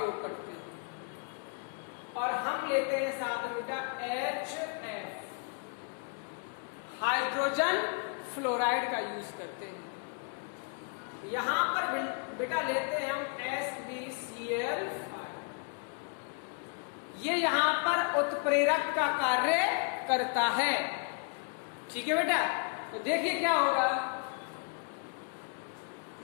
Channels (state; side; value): quieter; right; 36.1 dB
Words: करते हैं, और हम लेते हैं साथ में बेटा HF, हाइड्रोजन फ्लोराइड का यूज करते हैं। यहां पर बेटा लेते हैं हम SbCl5। ये यहां पर उत्प्रेरक का कार्य करता है। ठीक है बेटा, तो देखिए क्या होगा,